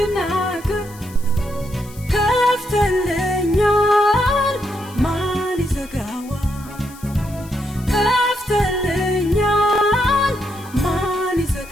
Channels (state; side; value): noise; left; hiss, 21 dB below the sound